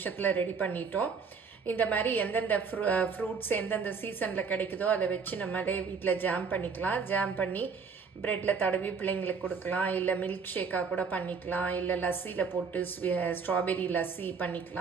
ரெடி பண்ணிட்டோம். இந்த மாதிரி எந்தெந்த ஃப்ரூட்ஸ் எந்தெந்த சீசனில் கிடைக்குதோ அதை வச்சு நம்மளே வீட்டில் ஜாம் பண்ணிக்கலாம். ஜாம் பண்ணி ப்ரெட்டில் தடவி பிள்ளைங்களுக்கு கொடுக்கலாம், இல்லை மில்க் ஷேக்காக கூட பண்ணிக்கலாம், இல்லை லஸ்ஸியில் போட்டு ஸ்ட்ராபெரி லஸ்ஸி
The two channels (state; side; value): quieter; left; 5.5 dB